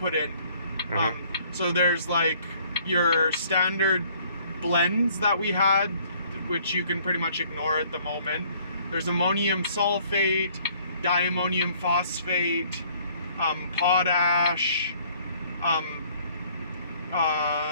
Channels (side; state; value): both; inverted; correlation -0.60